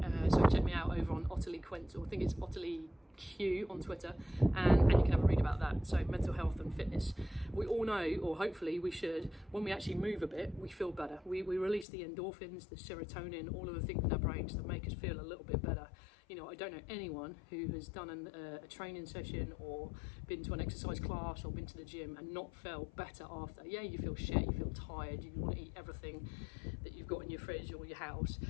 So check me out over on Ottilie Quint, or I think it's Ottilie Q on Twitter, and you can have a read about that. So mental health and fitness, we all know, or hopefully we should, when we actually move a bit, we feel better. We release the endorphins, the serotonin, all of the things in our brains that make us feel a little bit better. You know, I don't know anyone who has done a training session or been to an exercise class or been to the gym and not felt better after. Yeah, you feel shit, you feel tired, you want to eat everything that you've got in your fridge or your house,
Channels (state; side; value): drops out; right; at 11.9 s